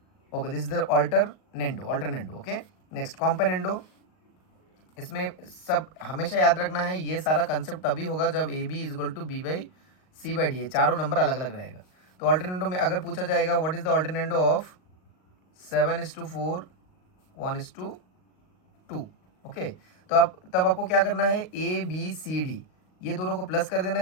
Okay, this is the alternendo. Okay, next componendo. इसमें सब हमेशा याद रखना है, ये सारा कंसेप्ट तभी होगा जब a B is equal to b by c by d, चारों नंबर अलग अलग रहेगा। तो ऑल्टरनेंडो में अगर पूछा जाएगा what is the alternendo of 7:4 1:2। Okay, तो आप तब आपको क्या करना है, ए बी सी डी ये दोनों को प्लस कर देना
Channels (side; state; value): right; late; 38 ms